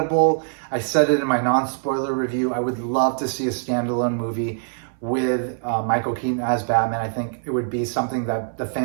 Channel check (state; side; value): silent; left; 59 dB below the other